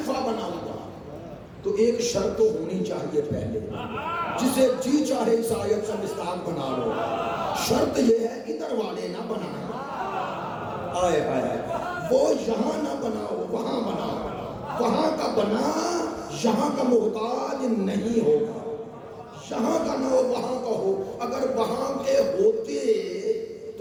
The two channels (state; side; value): identical; both; correlation 1.00